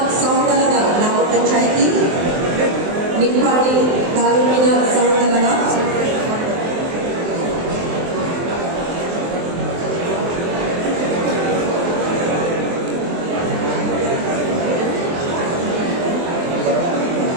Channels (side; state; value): left; late; 23 ms